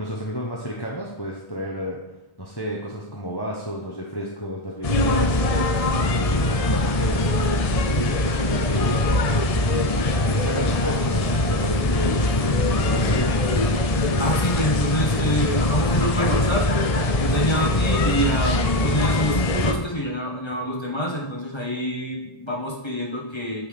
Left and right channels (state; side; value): late; right; 1.7 ms